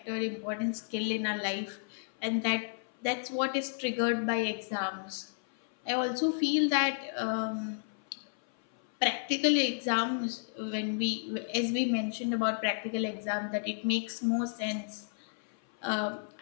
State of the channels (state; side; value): silent; right; 56 dB below the other